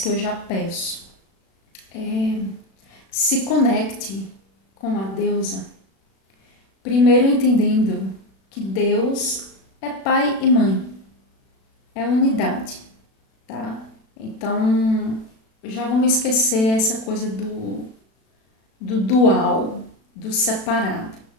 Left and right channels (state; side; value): late; right; 36 ms